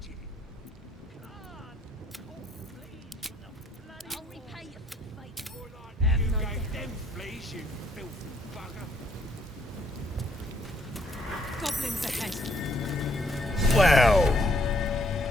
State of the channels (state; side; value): normal; both; correlation 0.68